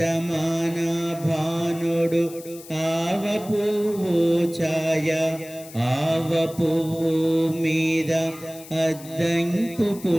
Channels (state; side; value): noise; left; hiss, 18 dB below the sound